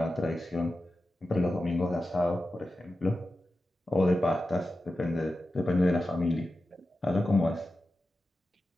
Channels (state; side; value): normal; both; correlation 0.92